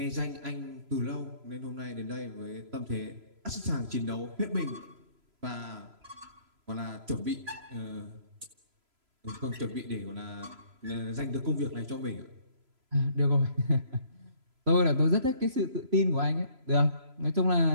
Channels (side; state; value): left; late; 3.0 ms